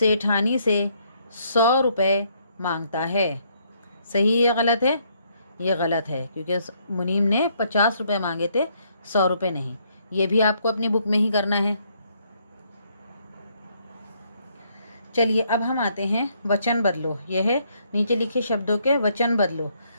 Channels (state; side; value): inverted; both; correlation -0.70